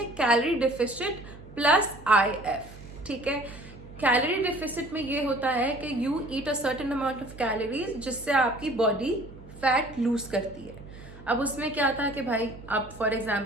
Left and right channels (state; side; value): noise; right; hum, 17 dB below the sound